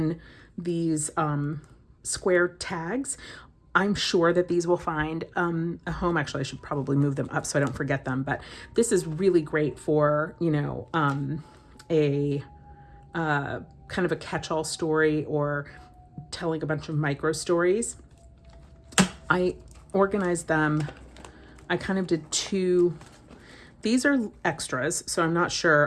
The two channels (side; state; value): both; identical; correlation 1.00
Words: these square tags. I'm sure that these will find a home. Actually, I should probably move them up so I don't forget them. But this is really great for, a kind of a catch-all story or telling a bunch of micro stories. I organized them. I kind of did two. These are extras, so I'm not